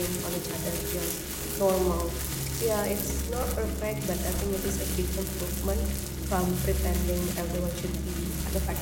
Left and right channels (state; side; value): identical; both; correlation 1.00